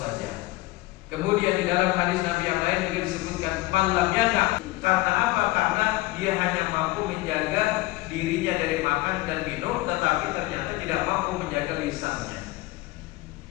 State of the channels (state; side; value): quieter; right; 19.7 dB